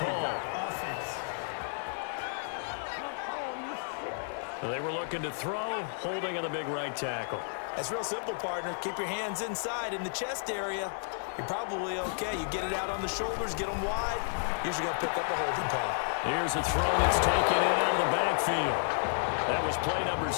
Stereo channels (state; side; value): silent; right; 57 dB below the other